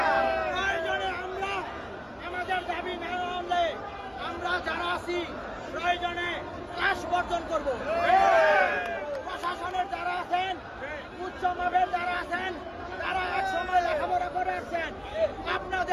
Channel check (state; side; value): identical; both; correlation 1.00